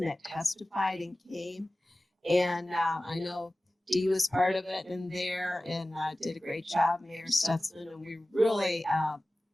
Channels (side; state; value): both; normal; correlation 0.97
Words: that testified and came. And I know Dee was part of it in there and did a great job, Mayor Stutzman, and we really